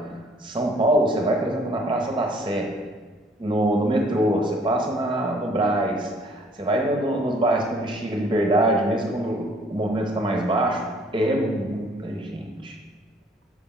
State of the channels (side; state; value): both; normal; correlation 0.58